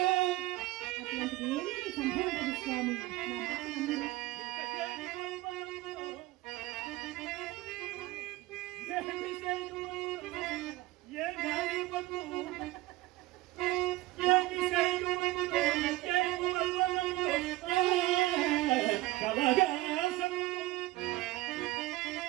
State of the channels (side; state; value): left; quieter; 18.4 dB